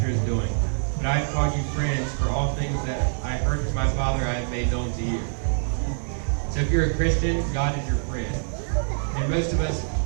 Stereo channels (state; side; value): silent; left; digital silence